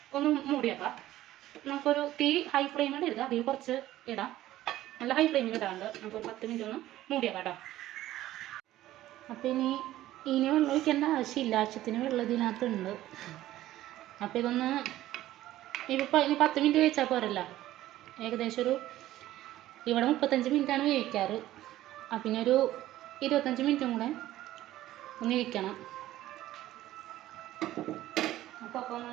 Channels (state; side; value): quieter; left; 14.6 dB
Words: ഒന്ന് മൂടിയേക്കാം. നമുക്കൊരു തീ ഹൈ ഫ്ലെയിമിൽ ഇടുക, അതിൽ കുറച്ച് ഇടാം. നല്ല ഹൈ ഫ്ലെയിമിൽ ഇടാണ്ട് നമുക്കൊരു 10 മിനിറ്റ് ഒന്ന് മൂടിയേക്കാം കേട്ടോ. അപ്പോൾ ഇനി വെള്ളം ഒഴിക്കേണ്ട ആവശ്യമില്ല, ആവശ്യത്തിന് വെള്ളം ഇതിനകത്തുണ്ട്. അപ്പോൾ ഇനി 10 മിനിറ്റ് കഴിച്ചാൽ പോരല്ല. ഏകദേശം ഇവിടെ 35 മിനിറ്റാണ് വേവിക്കാറ്. പിന്നെ ഒരു 25 മിനിറ്റും കൂടെ ഒന്ന് ഇരിക്കണം. അപ്പോൾ ഒന്ന്